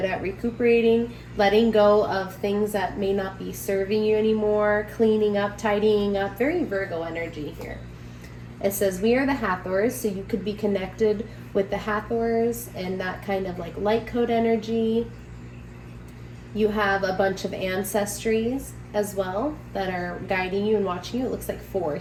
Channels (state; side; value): identical; both; correlation 1.00